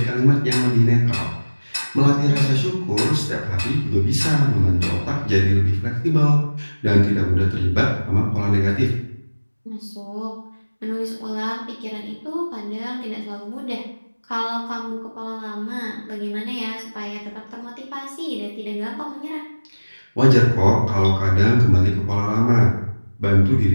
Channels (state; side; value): inverted; both; correlation -1.00